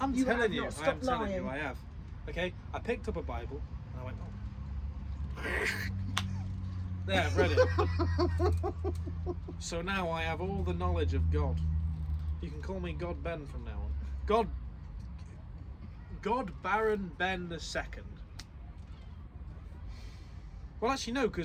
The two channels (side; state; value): both; identical; correlation 1.00